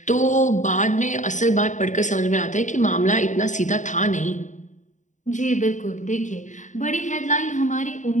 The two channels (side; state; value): right; late; 0.36 ms